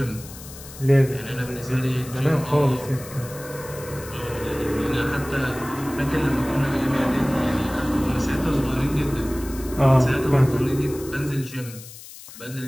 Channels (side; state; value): left; noise; hiss, 16 dB below the sound